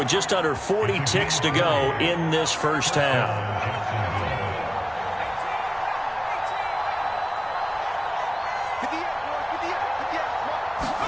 just under 40 ticks to go in this first half.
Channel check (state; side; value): identical; both; correlation 1.00